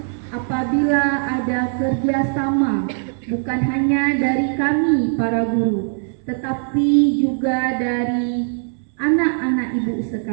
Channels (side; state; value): left; silent; 65 dB below the other